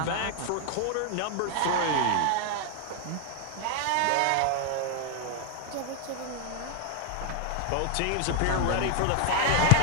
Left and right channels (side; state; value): both; different; correlation 0.00